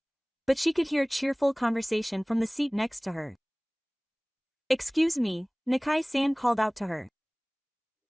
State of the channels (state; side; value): identical; both; correlation 1.00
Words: But she could hear cheerful conversation from the seat next to her. Excuse me, Nakai-san called out to her.